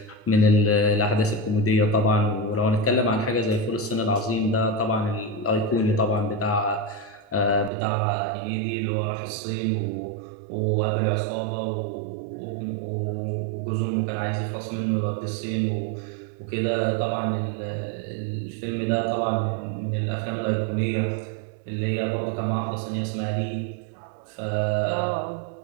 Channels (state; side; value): drops out; left; at 7.7 s